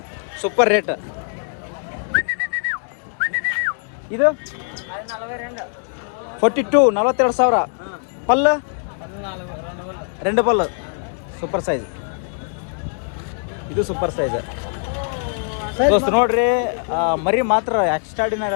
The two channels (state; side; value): silent; right; 59 dB below the other